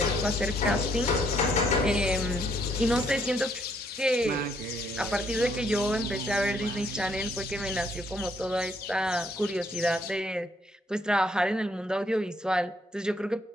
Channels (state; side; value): normal; both; correlation 0.69